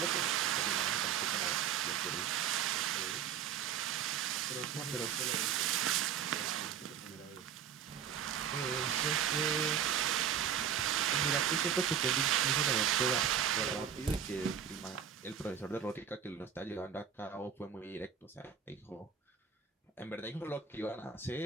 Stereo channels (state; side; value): quieter; left; 8.2 dB